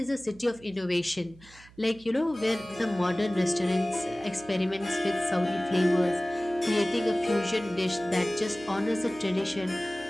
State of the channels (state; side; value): noise; right; hum, 24 dB below the sound